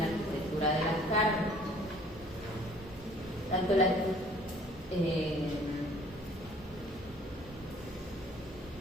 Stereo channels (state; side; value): normal; both; correlation 0.55